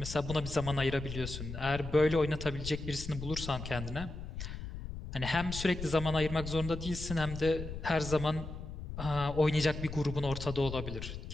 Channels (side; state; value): left; noise; rumble, 8 dB below the sound